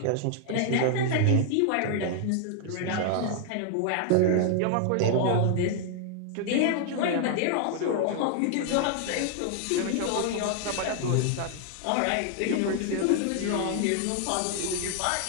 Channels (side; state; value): both; different; correlation 0.00